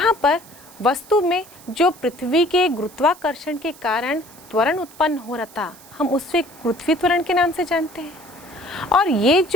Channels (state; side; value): noise; right; hiss, 22 dB below the sound